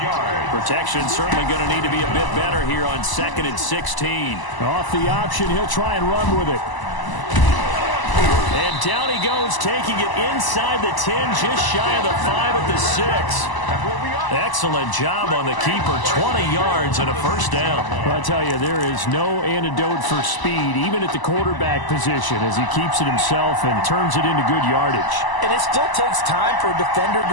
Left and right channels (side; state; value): right; late; 1.0 ms